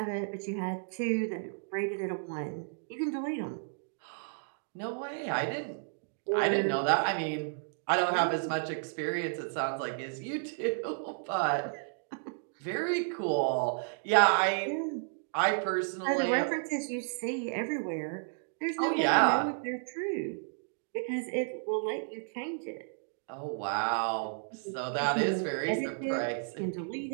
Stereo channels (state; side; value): silent; left; digital silence